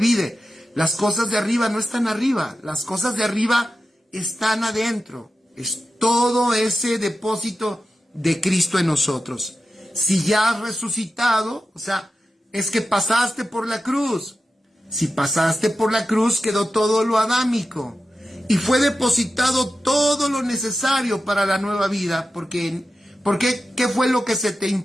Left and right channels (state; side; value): normal; both; correlation 0.92